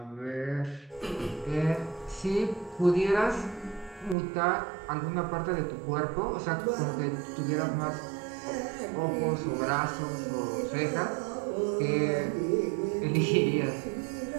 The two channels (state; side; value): drops out; left; at 4.2 s